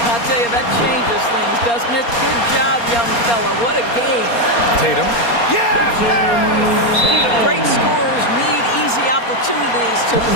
I'll tell you, that changes things, doesn't it? Good job, young fella. What a game. Tatum. Yes! Great scorers need easy opportunities to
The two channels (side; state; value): right; late; 4.3 ms